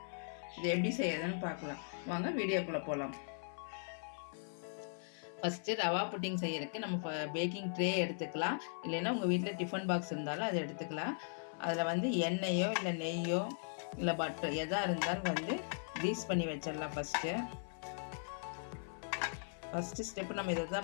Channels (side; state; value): right; silent; 52 dB below the other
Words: இது எப்படி செய்யறதுன்னு பார்க்கலாம் வாங்க, வீடியோக்குள்ளே போகலாம். ஃபஸ்ட்டு ரவா புட்டிங் செய்யறதுக்கு நம்ம பேக்கிங் ட்ரே எடுத்துக்கலாம். இல்லைன்னா உங்கள் வீட்டில் டிஃபன் பாக்ஸ் இருந்தாலும் அதை எடுத்துக்கலாம். அதில் எண்ணெயோ இல்லை நெய்யோ இல்லை பட்டர் எதாக இருந்தாலும் க்ரீஸ் பண்ணி வச்சிடலாம். ஃபஸ்ட்டு ஸ்டெப்பு நம்ம இதை